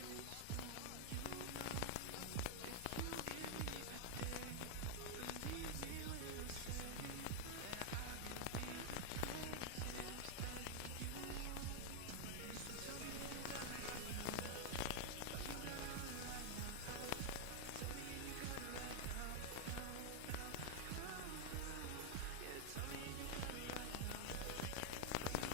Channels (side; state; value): both; different; correlation 0.00